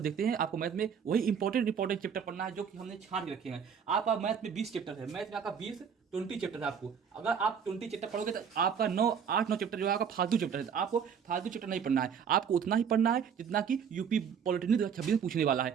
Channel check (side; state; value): left; quieter; 7.2 dB